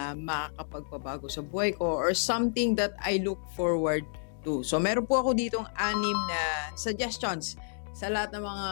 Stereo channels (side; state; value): right; silent; digital silence